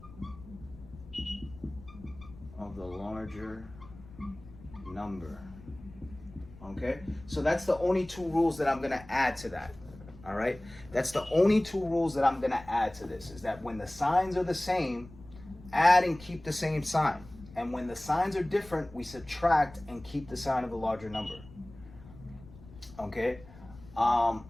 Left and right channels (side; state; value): left; noise; rumble, 19 dB below the sound